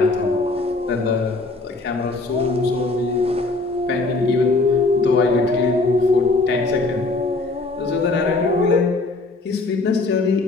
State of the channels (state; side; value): quieter; right; 3.3 dB